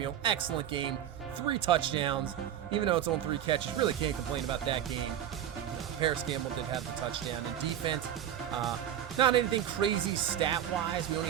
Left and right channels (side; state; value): left; quieter; 10.6 dB